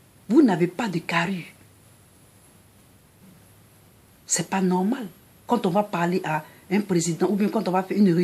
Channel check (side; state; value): both; identical; correlation 1.00